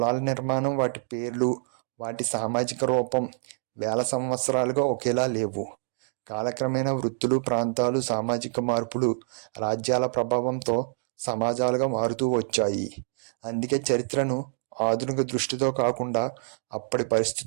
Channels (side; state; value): left; silent; digital silence